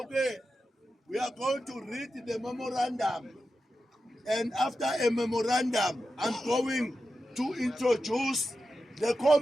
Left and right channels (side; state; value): both; normal; correlation 0.91